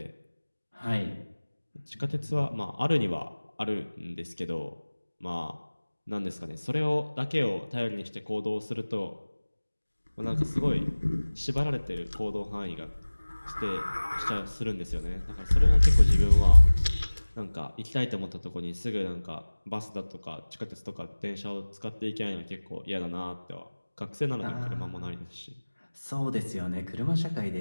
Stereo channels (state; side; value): inverted; both; correlation -1.00